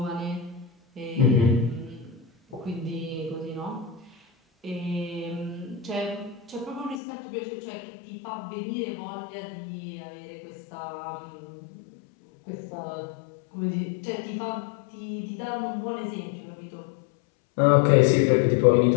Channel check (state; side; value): drops out; right; at 7.0 s